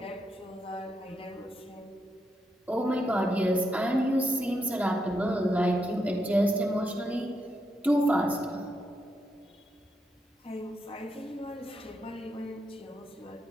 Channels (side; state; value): both; normal; correlation 0.82